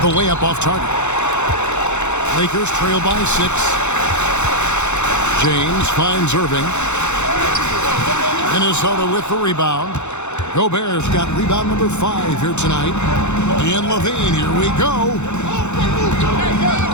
The layup off target. Lakers trail by 6. James finds Irving. Minnesota with the rebound. Gobert's got rebound number 5 here tonight. And LaVine, here we go.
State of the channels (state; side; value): late; right; 0.83 ms